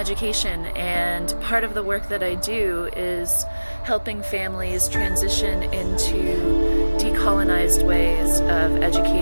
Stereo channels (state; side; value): inverted; both; correlation -1.00